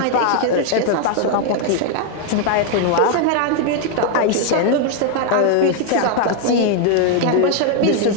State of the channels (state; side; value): different; both; correlation 0.00